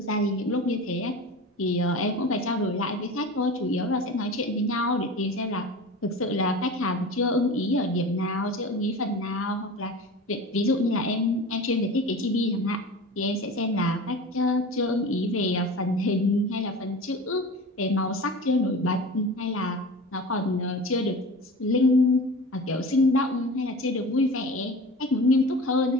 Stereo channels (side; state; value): both; normal; correlation 0.34